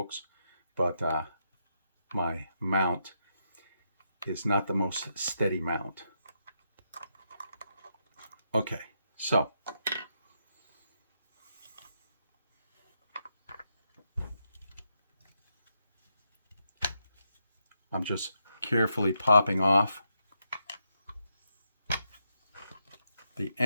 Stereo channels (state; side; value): inverted; both; correlation -0.82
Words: but my mount is not the most steady mount. Okay, so I'm just carefully popping off the